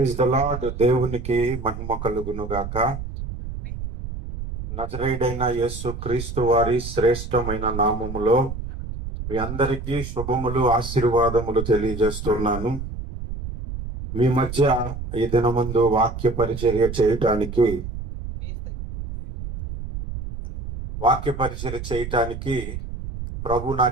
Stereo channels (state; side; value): noise; right; rumble, 8 dB below the sound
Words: the lord. దేవునికి మహిమ కలుగును గాక. నజరేయుడైన యేసు క్రీస్తు వారి శ్రేష్టమైన నామములో మీ అందరికీ శుభములు, ఆశీర్వాదములు తెలియజేస్తున్నాను. మీ మధ్య ఈ దినమందు వాక్య పరిచర్య చేయటానికి ప్రభు